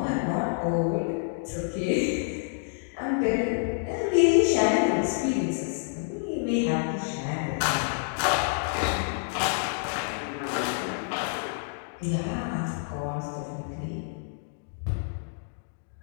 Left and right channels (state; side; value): silent; right; digital silence